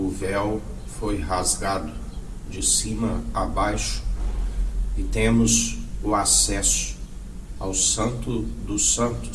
véu foi rasgado de cima a baixo e temos o acesso ao Santo dos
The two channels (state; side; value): identical; both; correlation 1.00